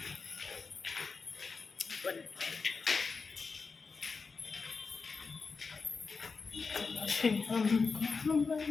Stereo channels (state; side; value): quieter; right; 4.7 dB